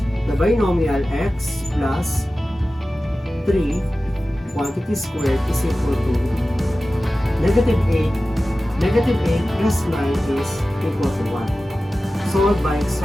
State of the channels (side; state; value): both; normal; correlation 0.95